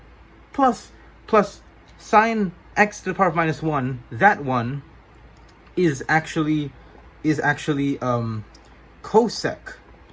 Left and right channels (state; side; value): identical; both; correlation 1.00